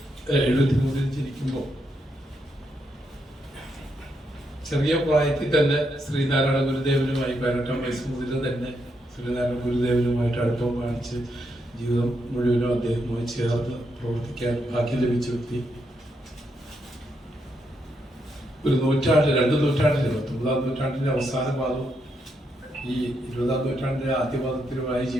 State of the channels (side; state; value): both; normal; correlation 0.80